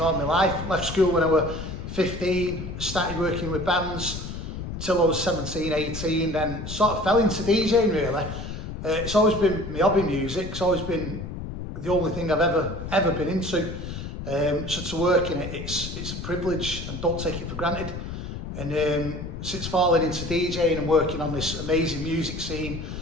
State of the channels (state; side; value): noise; left; rumble, 7 dB below the sound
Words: my life. Left school when I was 15, started working with bands till I was 17, 18, then sort of fell into DJing really. It's always been my hobby, music. It's always been the only thing I've ever been into. So to work in it, it's a privilege and don't take it for granted. And since falling into DJing and working on this amazing music scene,